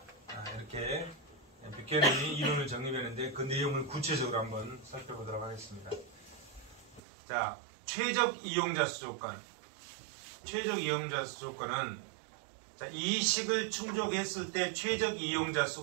이렇게 뷰캐넌이 이론을 정립했는데 그 내용을 구체적으로 한번 살펴보도록 하겠습니다. 자, 최적 이용자 수 조건. 최적 이용자 수 조건은, 자, 이 식을 충족했을 때 최적 이용자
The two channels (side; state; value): left; drops out; at 7.0 s